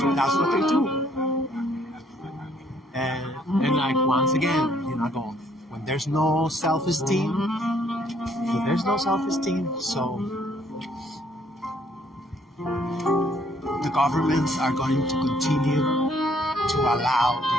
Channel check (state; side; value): normal; both; correlation 0.65